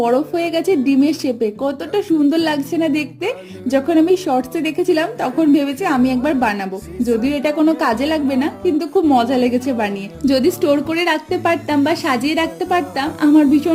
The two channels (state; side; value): identical; both; correlation 1.00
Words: হয়ে গেছে ডিমের শেপে, কতটা সুন্দর লাগছে না দেখতে। যখন আমি শর্টসে দেখেছিলাম তখন ভেবেছি আমি একবার বানাবো, যদিও এটা কোনো কাজে লাগবে না, কিন্তু খুব মজা লেগেছে বানিয়ে। যদি স্টোর করে রাখতে পারতাম বা সাজিয়ে রাখতে পারতাম আমার